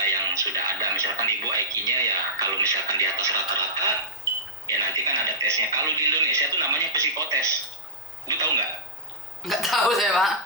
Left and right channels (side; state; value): both; normal; correlation -0.14